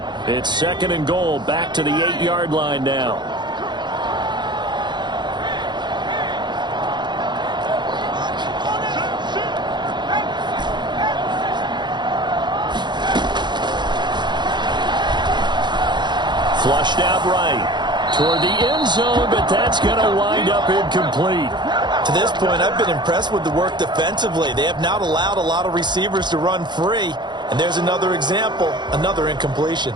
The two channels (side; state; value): left; late; 0.21 ms